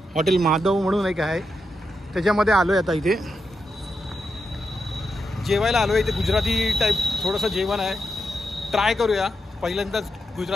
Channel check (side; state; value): both; normal; correlation 0.85